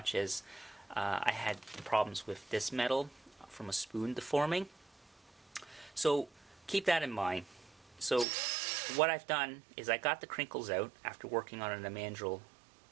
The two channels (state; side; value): drops out; left; at 8.2 s